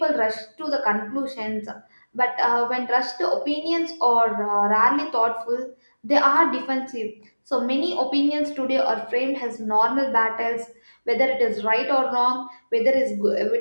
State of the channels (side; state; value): both; inverted; correlation -1.00